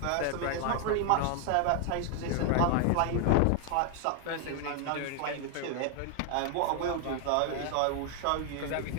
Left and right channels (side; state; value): both; different; correlation 0.00